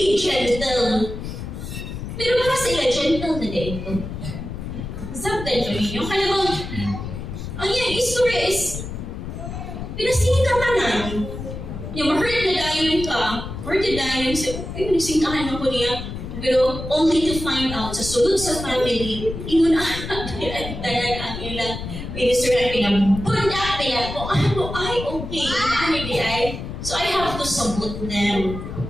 gentle? Pero para sa ila, gentle na dito. Sabtan ko ninyo. Kaya bang, ang iyang istorya is, pinasingin ka tanan. Yung ma-hurt na dayon ka, hurt na dayon sa, ay, nagsingkahan ako niya. Pero only to find out, sa sulod sa family, inunaan ang ilang minister na pinabundak nila ko, ano ay okay, ano di ay. So I have to sabot them.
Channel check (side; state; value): left; noise; rumble, 8 dB below the sound